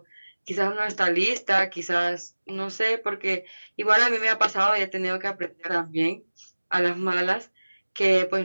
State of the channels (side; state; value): both; inverted; correlation -1.00